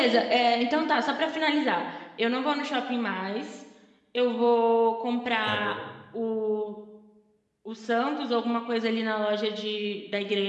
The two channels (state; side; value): identical; both; correlation 1.00